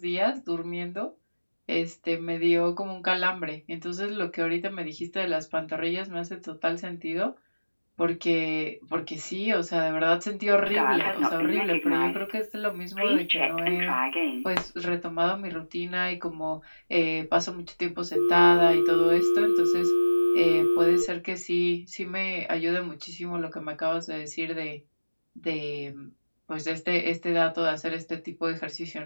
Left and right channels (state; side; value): inverted; both; correlation -1.00